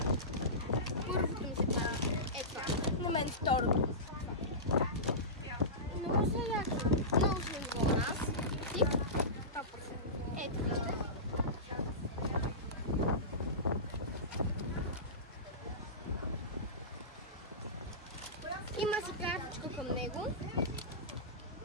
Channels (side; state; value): both; normal; correlation -0.20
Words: Първото ми се падна. Е това. На мен второто. Много са яко. Много са ниво на нас. Тип. Ето вижте. Има си картичка към него.